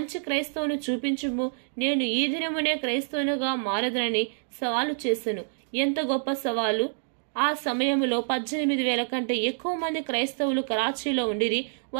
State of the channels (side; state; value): left; silent; digital silence